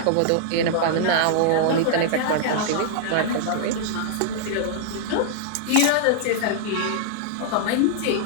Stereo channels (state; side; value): different; both; correlation -0.01